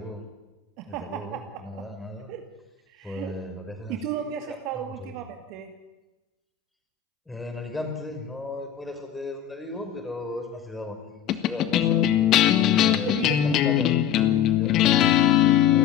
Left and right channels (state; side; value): quieter; right; 9.1 dB